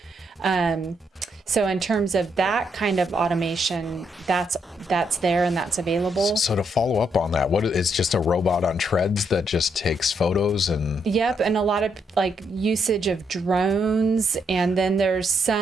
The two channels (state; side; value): normal; both; correlation 0.76